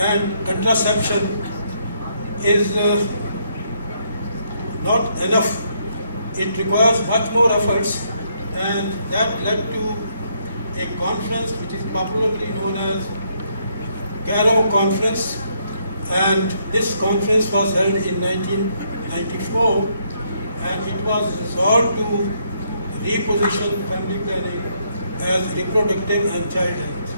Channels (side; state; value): both; inverted; correlation -0.73